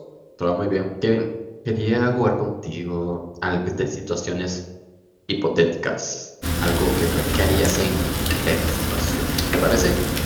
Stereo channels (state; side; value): identical; both; correlation 1.00